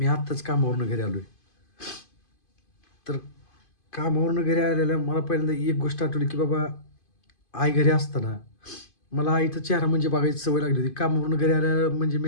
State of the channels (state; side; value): late; right; 2.5 ms